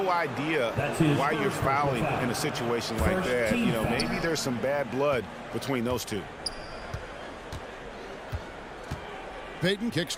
idea why you're fouling in a situation like that. You know, maybe there's some bad blood between those two. Peyton kicks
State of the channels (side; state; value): both; identical; correlation 1.00